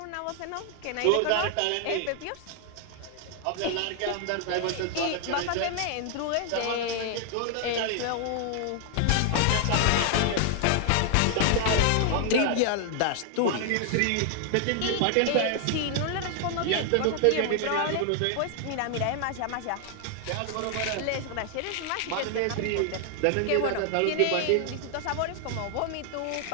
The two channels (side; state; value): both; different; correlation 0.00